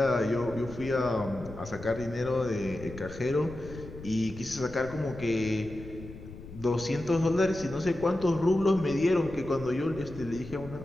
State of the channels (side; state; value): left; noise; rumble, 14 dB below the sound